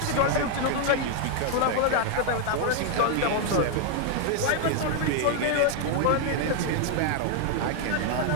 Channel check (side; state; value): both; different; correlation 0.00